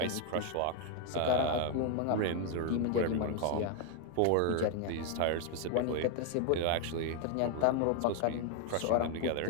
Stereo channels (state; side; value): different; both; correlation 0.01